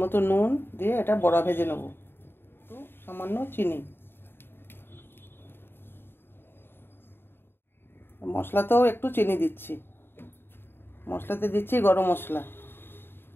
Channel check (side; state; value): right; late; 0.11 ms